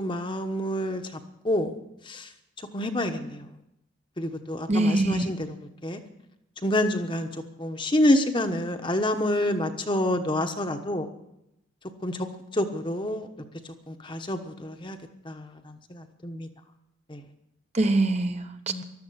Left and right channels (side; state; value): both; normal; correlation 0.69